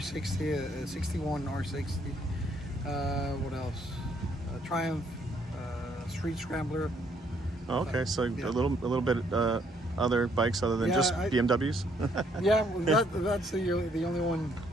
a 61 R60. What else? Triumph Street Scrambler. Oh, okay, so a little bit other bikes other than just BMWs. Yeah, that's the only one.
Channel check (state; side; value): normal; both; correlation 0.68